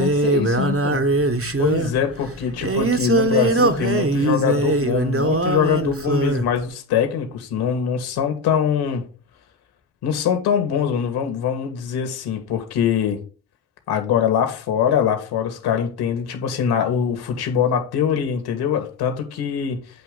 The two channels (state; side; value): quieter; right; 3.5 dB